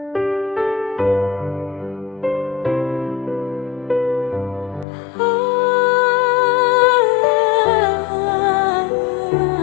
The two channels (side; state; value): right; drops out; at 4.9 s